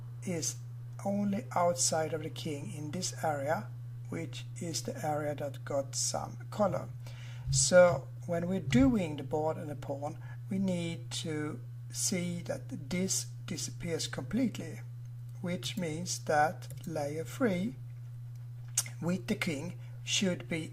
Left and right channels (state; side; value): identical; both; correlation 1.00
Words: is only outside of the king in this area, which is the area that got some color. So when we're doing the board and the pawn, we need to see that this disappears completely, which means that layer 3 with the king should be